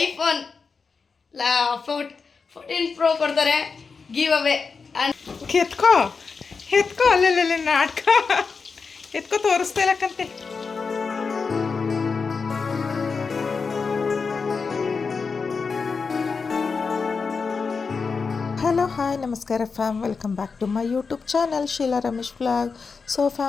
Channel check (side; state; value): right; quieter; 5.0 dB